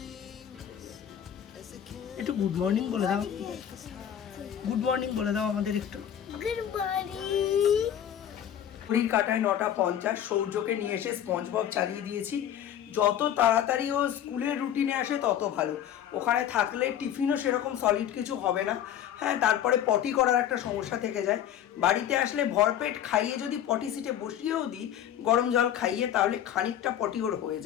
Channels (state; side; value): quieter; right; 10.2 dB